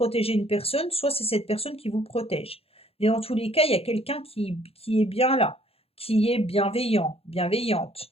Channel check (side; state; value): right; late; 0.28 ms